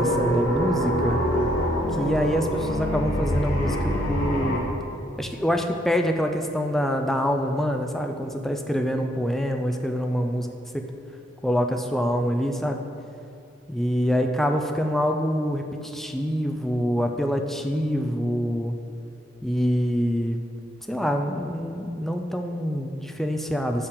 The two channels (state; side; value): normal; both; correlation 0.78